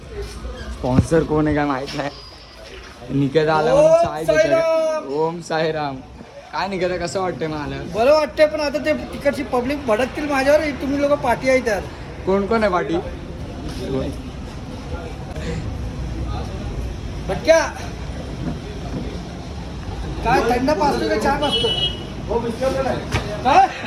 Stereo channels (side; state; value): both; identical; correlation 1.00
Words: स्पॉन्सर कोण आहे काय माहित नाही. निकेत आला म्हणून चाय देतात. ओम साईराम. काय निकेत, कसं वाटतंय मला? बरं वाटतंय, पण आता ते तिकडची पब्लिक भडकतील माझ्यावर. तुम्ही लोक पाठी आहे त्यात. कोण कोण आहे पाठी? भटक्या काय थंड पाचतो का चहा पाचतो? काय